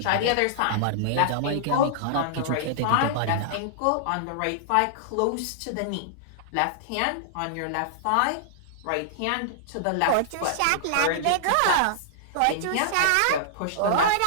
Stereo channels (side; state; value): both; different; correlation -0.01